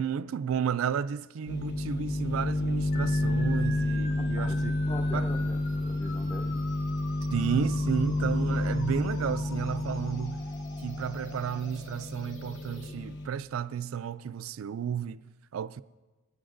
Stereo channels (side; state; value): both; normal; correlation 0.70